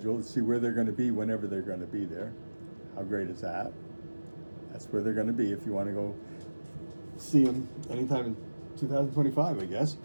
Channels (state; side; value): inverted; both; correlation -1.00